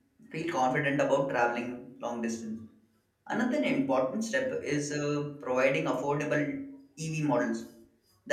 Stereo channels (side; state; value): both; identical; correlation 1.00